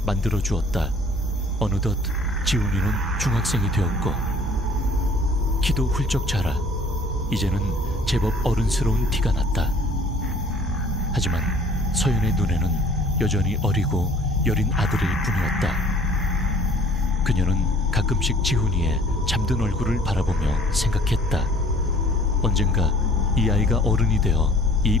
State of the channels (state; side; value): normal; both; correlation 0.54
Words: 만들어 주었다. 어느덧 지훈이는 중학생이 되었고 키도 훌쩍 자라 이제는 제법 어른스러운 티가 났다. 하지만 서연의 눈에는 여전히 어리고 여린 아들일 뿐이었다. 그녀는 가끔씩 지훈이의 잠든 얼굴을 바라보며 생각했다. 언젠가 이 아이가 어른이 되어 이